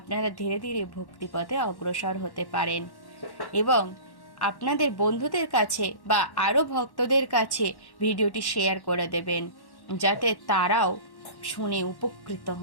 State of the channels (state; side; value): late; right; 1.1 ms